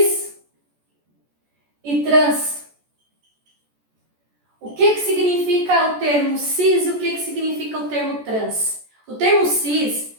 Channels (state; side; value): late; left; 14 ms